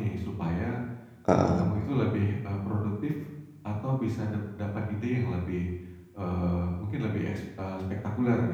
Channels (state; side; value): identical; both; correlation 1.00